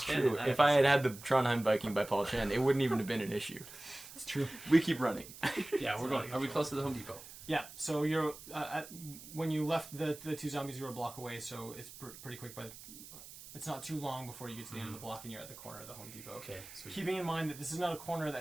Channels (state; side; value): noise; right; hiss, 15 dB below the sound